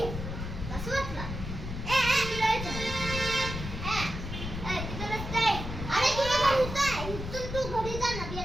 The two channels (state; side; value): noise; left; rumble, 6 dB below the sound